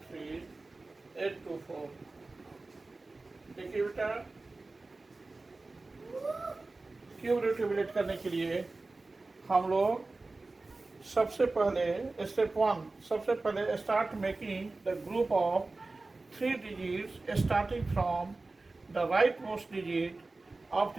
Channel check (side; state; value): left; quieter; 3.4 dB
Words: 3 8 2 4। देखिए बेटा, क्यूब रूट कैलकुलेट करने के लिए हम लोग सबसे पहले स्टेप 1, सबसे पहले start making the group of 3 digits starting from the rightmost digit of